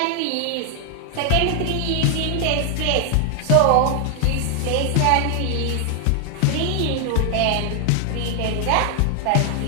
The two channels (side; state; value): both; different; correlation 0.00